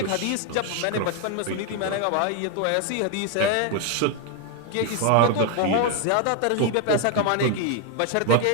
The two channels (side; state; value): both; different; correlation 0.01